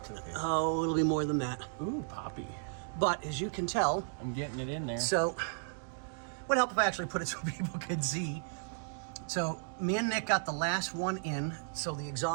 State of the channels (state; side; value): silent; left; digital silence